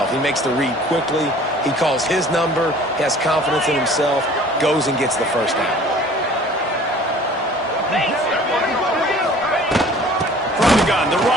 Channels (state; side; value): normal; both; correlation 0.49